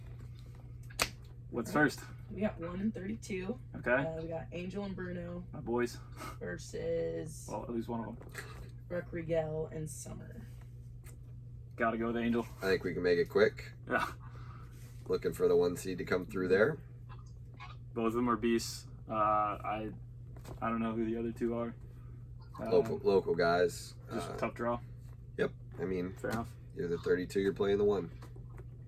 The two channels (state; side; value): identical; both; correlation 1.00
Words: What's first? We got 1 and 32. Okay, We got Angel and Bruno my boys. versus Well, at least one of them. Rodriguez and Summer. Got to go with Angel. I think we can make it quick. Yeah, Looking for the 1 seed to come through there. both of them are beasts. I don't know who the other two are. Local guys. Just a tough draw. I mean, Fair enough. you're the 32, you're playing the 1.